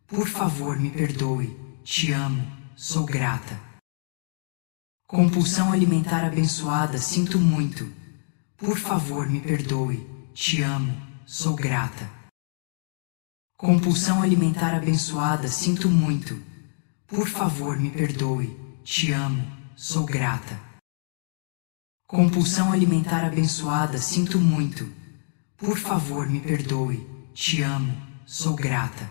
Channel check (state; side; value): silent; right; digital silence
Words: Por favor, me perdoe. Te amo, sou grata. Compulsão alimentar abençoada, sinto muito. Por favor, me perdoe. Te amo, sou grata. Compulsão alimentar abençoada, sinto muito. Por favor, me perdoe. Te amo, sou grata. Compulsão alimentar abençoada, sinto muito. Por favor, me perdoe. Te amo, sou